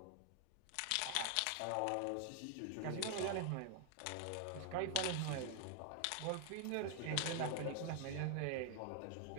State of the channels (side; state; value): both; different; correlation 0.00